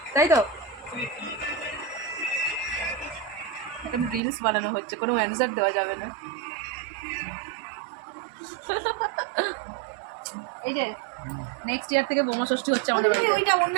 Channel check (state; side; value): drops out; left; at 4.2 s